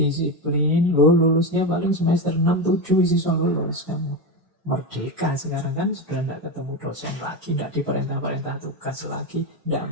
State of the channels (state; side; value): normal; both; correlation 0.16